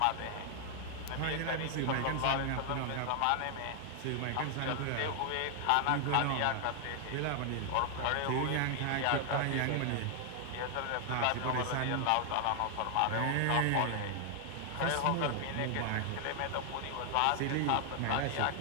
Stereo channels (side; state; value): both; different; correlation 0.00